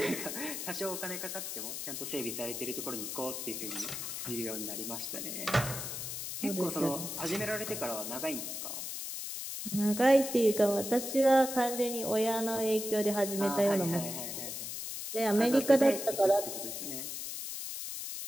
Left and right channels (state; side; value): noise; left; hiss, 6 dB below the sound